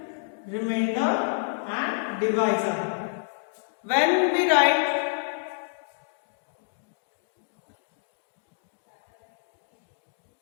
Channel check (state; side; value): silent; right; digital silence